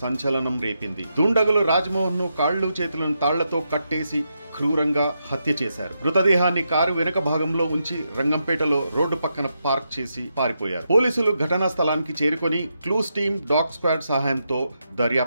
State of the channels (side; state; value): both; inverted; correlation -0.83